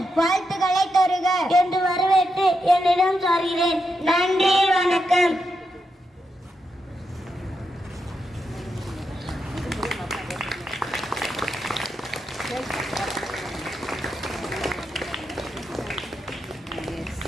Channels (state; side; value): normal; both; correlation 0.85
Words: வாழ்த்துக்களை தருக என்று வரவேற்று என்னிடம் சார்கிறேன். நன்றி, வணக்கம்.